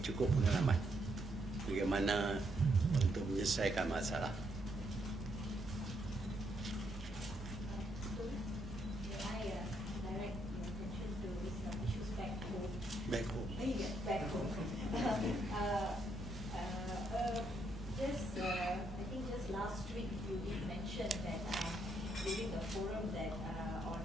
cukup pengalaman bagaimana untuk menyelesaikan masalah. Back home. Back home. I think just last week you did mention that during the forum that on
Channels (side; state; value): both; normal; correlation 0.76